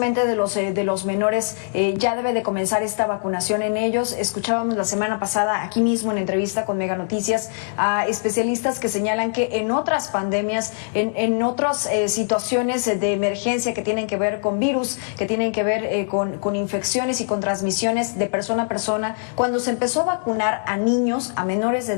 de los menores, ya debe de comenzar esta vacunación en ellos. Escuchábamos la semana pasada aquí mismo en entrevista con Mega Noticias a especialistas que señalan que en otras pandemias, en otras situaciones de emergencia que tienen que ver con virus, que tienen que ver con infecciones y con transmisiones de persona a persona, cuando se empezó a vacunar a niños, a menores de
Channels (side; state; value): right; silent; digital silence